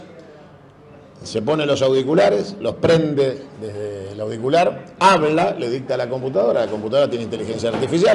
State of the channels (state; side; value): identical; both; correlation 1.00